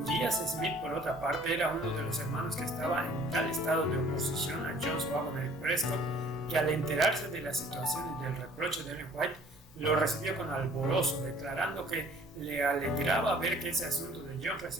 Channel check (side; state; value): both; normal; correlation 0.54